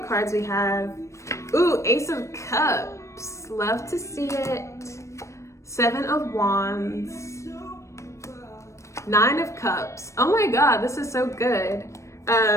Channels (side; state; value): right; late; 0.15 ms